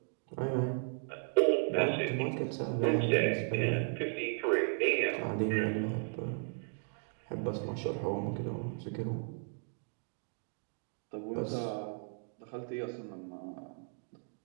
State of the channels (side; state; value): left; silent; 54 dB below the other